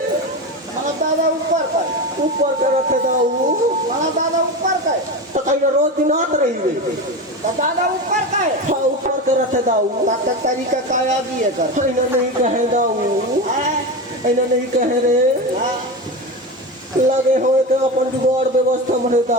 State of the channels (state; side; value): normal; both; correlation 0.22